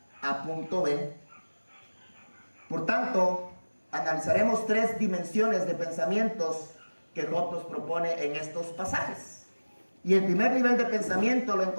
a punto B. Por tanto, analizaremos 3 dimensiones de pensamientos que Job nos propone en estos pasajes. Y el primer nivel de pensamiento lo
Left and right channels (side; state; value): both; inverted; correlation -1.00